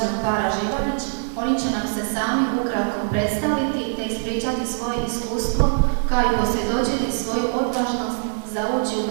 para Živanić. Oni će nam se sami ukratko predstaviti te ispričati svoje iskustvo, kao i posvjedočiti svoju odvažnost za ući u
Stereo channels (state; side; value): silent; left; digital silence